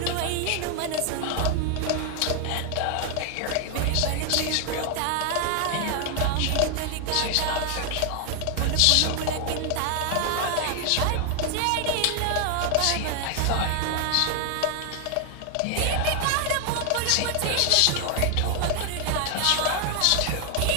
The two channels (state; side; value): different; both; correlation 0.00